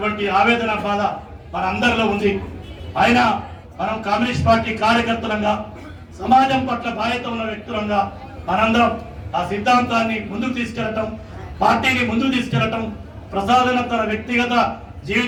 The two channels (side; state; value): both; identical; correlation 1.00